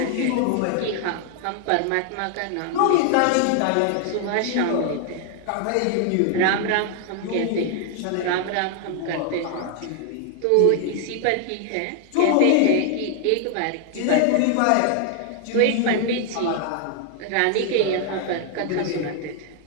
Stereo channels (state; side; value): different; both; correlation 0.00